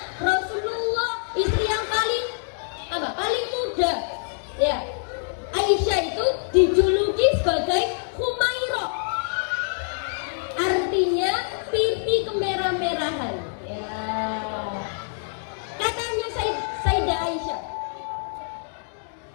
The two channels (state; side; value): silent; right; digital silence